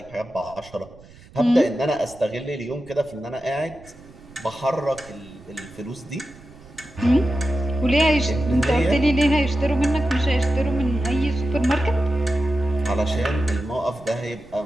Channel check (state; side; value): noise; right; rumble, 22 dB below the sound